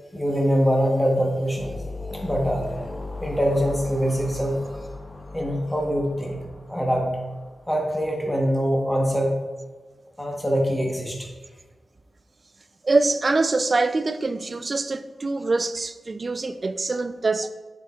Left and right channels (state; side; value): normal; both; correlation 0.94